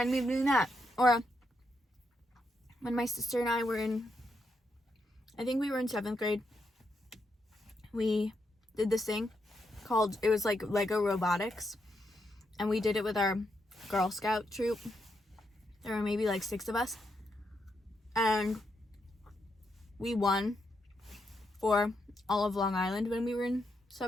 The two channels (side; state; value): both; normal; correlation 0.81